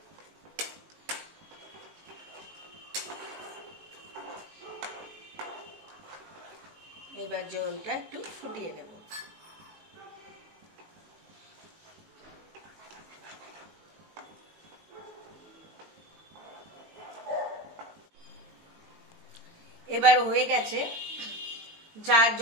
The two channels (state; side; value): late; left; 19 ms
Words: এবার জলটা একটু ফুটিয়ে নেব। এবার হয়ে গেছে।